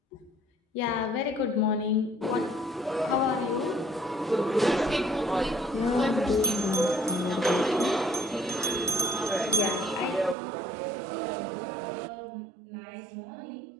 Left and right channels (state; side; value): drops out; left; at 10.4 s